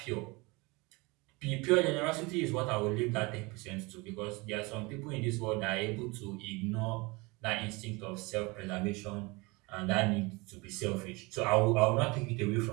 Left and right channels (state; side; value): quieter; left; 25.5 dB